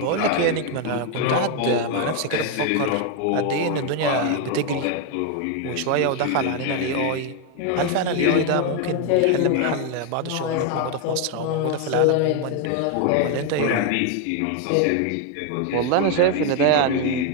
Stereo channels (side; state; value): both; different; correlation 0.01